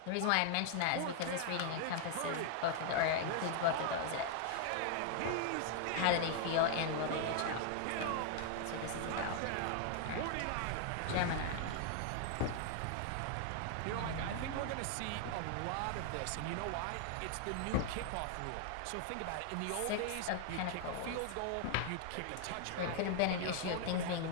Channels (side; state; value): both; different; correlation 0.00